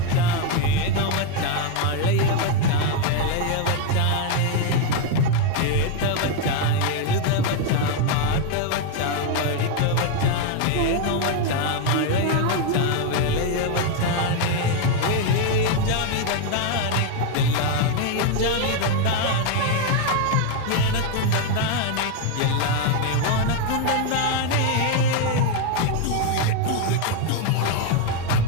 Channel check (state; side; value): different; both; correlation 0.01